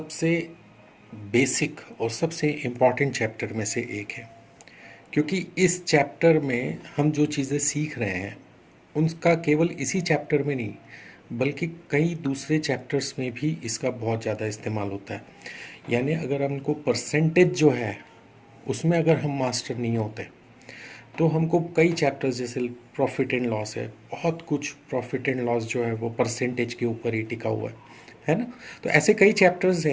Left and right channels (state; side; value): identical; both; correlation 1.00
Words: बेसिक और सबसे इम्पॉर्टेंट चैप्टर में से एक है, क्योंकि इस चैप्टर में हम जो चीज़ें सीख रहे हैं उनका केवल इसी चैप्टर में नहीं बल्कि कई दूसरे चैप्टर्स में भी इसका बहुत ज़्यादा इस्तेमाल होता है। यानी अगर हमको परसेंटेज जो है उसमें अगर हम मास्टर नहीं होते तो हमको कई चैप्टर्स जैसे प्रॉफिट एंड लॉस है, बहुत कुछ प्रॉफिट एंड लॉस जो है वो परसेंटेज के ऊपर ही टिका हुआ है ना। तो ऐसे कई चैप्टर्स